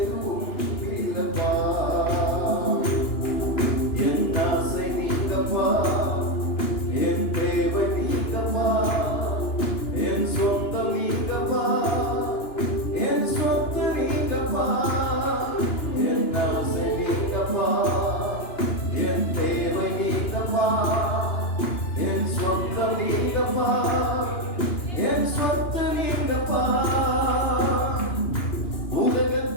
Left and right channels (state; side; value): late; right; 2.9 ms